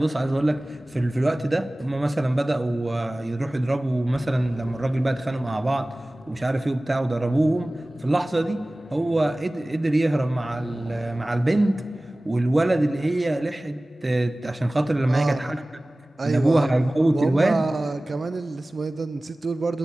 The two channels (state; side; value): normal; both; correlation 0.98